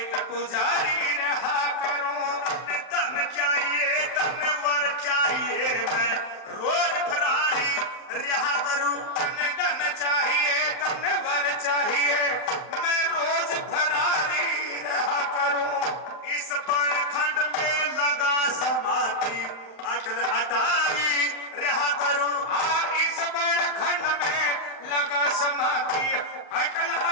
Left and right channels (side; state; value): right; late; 31 ms